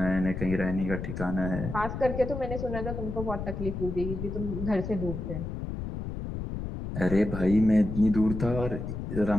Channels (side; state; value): left; noise; rumble, 5 dB below the sound